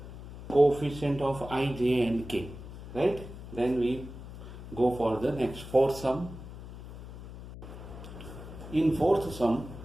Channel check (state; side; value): noise; left; hum, 13 dB below the sound